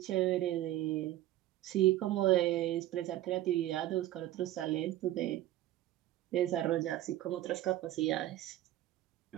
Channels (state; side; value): quieter; left; 14.4 dB